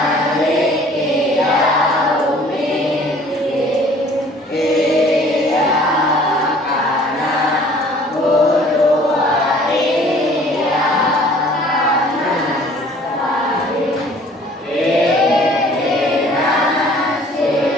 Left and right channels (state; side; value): normal; both; correlation 0.53